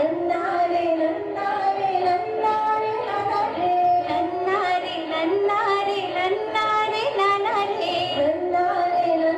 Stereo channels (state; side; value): identical; both; correlation 1.00